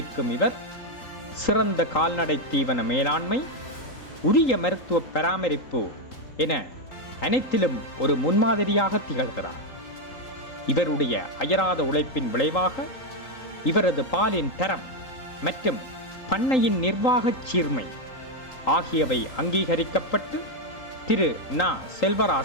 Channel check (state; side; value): late; right; 3.8 ms